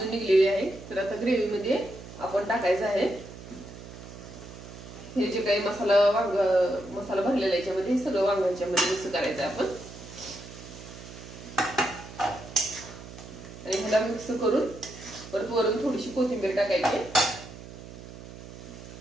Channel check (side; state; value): right; noise; hum, 14 dB below the sound